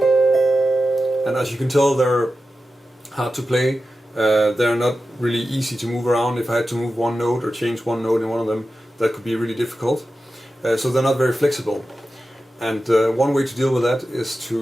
And as you can tell, they're hard to play. They're not really easy to move around. If I had to move one note or change one note in one of them, that could be really difficult. So they're not very flexible. And one way to deal with that is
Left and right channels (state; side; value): normal; both; correlation 0.92